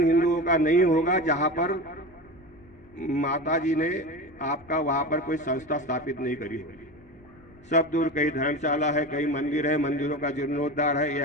हिंदुओं का नहीं होगा जहाँ पर माता जी ने आपका वहाँ पर कोई संस्था स्थापित नहीं करी होगी। सब दूर कहीं धर्मशाला है, कहीं मंदिर है, मंदिरों का जीर्णोद्धार है।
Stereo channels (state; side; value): noise; left; rumble, 27 dB below the sound